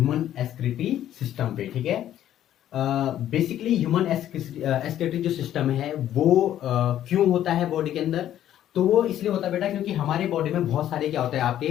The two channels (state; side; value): quieter; right; 11.7 dB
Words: एक्सक्रीटरी सिस्टम पे। ठीक है, बेसिकली ह्यूमन एक्सक्रीटरी जो सिस्टम है वो क्यों होता है बॉडी के अंदर। तो वो इसलिए होता है बेटा क्योंकि हमारे बॉडी में बहुत सारे क्या होते हैं आपके